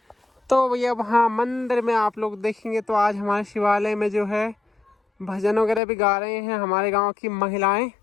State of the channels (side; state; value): right; drops out; at 5.8 s